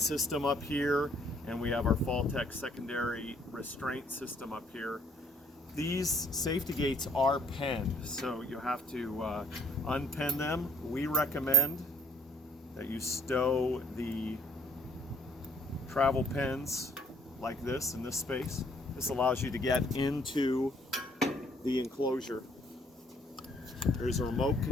system up here, and we have our Faltech secondary restraint system up here. These safety gates are penned, so you have to unpen them. We recommend that you stow the travel pens like this in this space. This allows you to get into the enclosure. There's a remote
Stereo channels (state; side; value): normal; both; correlation 0.61